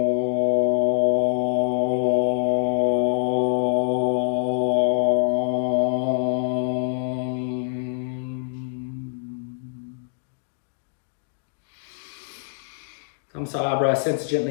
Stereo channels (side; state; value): right; silent; digital silence